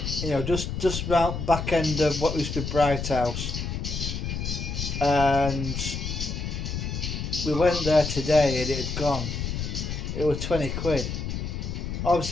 Just round back end of what used to be Bright House, and we went there today and it had gone. It was 20 quid.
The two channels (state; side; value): noise; left; rumble, 4 dB below the sound